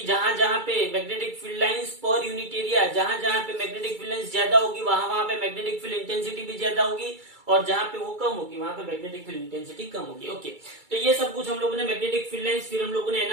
जहां जहां पे magnetic field lines per unit area, जहां जहां पे मैग्नेटिक फील्ड लाइंस ज्यादा होगी वहां वहां पे मैग्नेटिक फील्ड इंटेंसिटी भी ज्यादा होगी, और जहां पे वो कम होगी वहां पे मैग्नेटिक फील्ड इंटेंसिटी कम होगी। ओके, तो ये सब कुछ हम लोगों ने मैग्नेटिक फील्ड लाइंस। फिर हम लोगों ने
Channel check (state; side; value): late; left; 2.3 ms